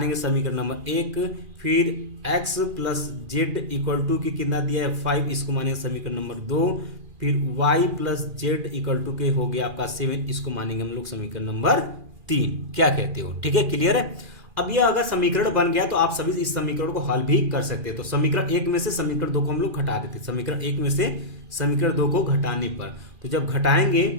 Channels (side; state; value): left; late; 2.4 ms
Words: समीकरण नंबर 1। फिर x + z इक्वल टू के कितना दिया है 5, इसको मानेंगे समीकरण नंबर 2। फिर y + z इक्वल टू के हो गया आपका 7, इसको मानेंगे हम लोग समीकरण नंबर 3। क्या कहते हो, ठीक है, क्लियर है। अब ये अगर समीकरण बन गया तो आप सभी इस समीकरण को हल भी कर सकते हैं। तो समीकरण 1 में से समीकरण 2 को हम लोग घटा देते हैं, समीकरण 1 में से समीकरण 2 को घटाने पर, तो जब घटाएंगे